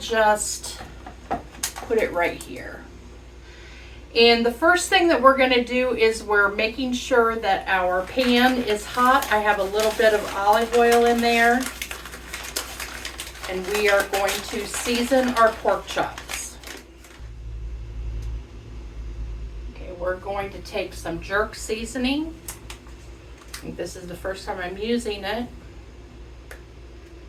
put it right here. And the first thing that we're going to do is we're making sure that our pan is hot. I have a little bit of olive oil in there. And we are going to season our pork chops. Okay, we're going to take some jerk seasoning. I think this is the first time I'm using it.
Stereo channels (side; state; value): both; identical; correlation 1.00